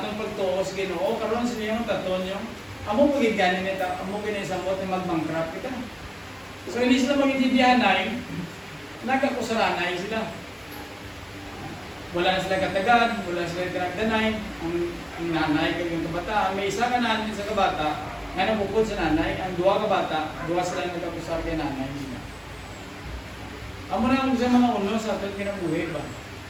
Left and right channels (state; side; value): identical; both; correlation 1.00